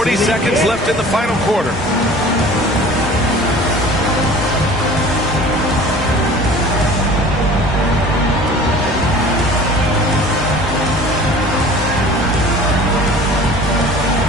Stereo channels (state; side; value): normal; both; correlation 0.44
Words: seconds left in the final quarter.